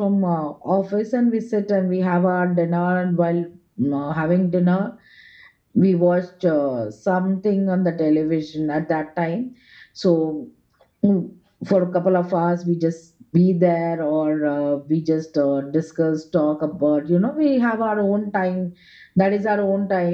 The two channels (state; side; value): identical; both; correlation 1.00